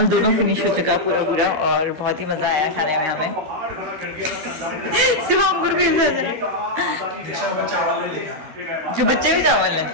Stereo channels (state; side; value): late; left; 13 ms